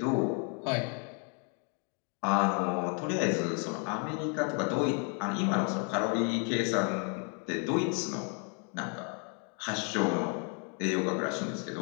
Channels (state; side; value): quieter; right; 39.3 dB